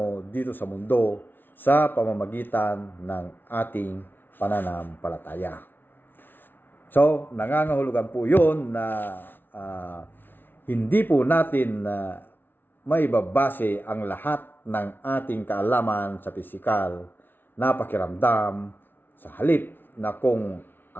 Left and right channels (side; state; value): right; late; 0.098 ms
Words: dito sa mundo sa pamamagitan ng ating pananampalataya. So, nangangahulugan po yun na hindi po natin maibabase ang lahat ng ating kaalaman sa pisikal na pakiramdam sa halip na kung